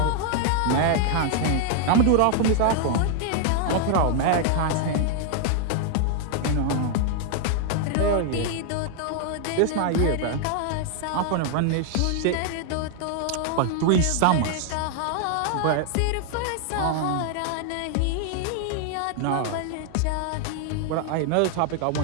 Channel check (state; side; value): different; both; correlation 0.00